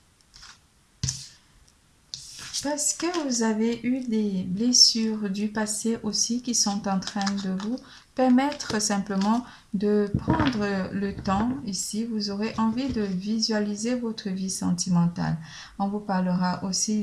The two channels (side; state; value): both; identical; correlation 1.00